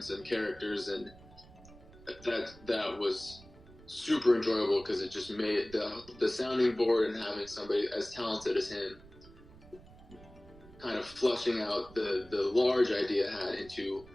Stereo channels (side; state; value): right; noise; rumble, 21 dB below the sound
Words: and characters, and that was super enjoyable because it just made the sounding board and having somebody as talented as him kind of flushing out the large idea I had into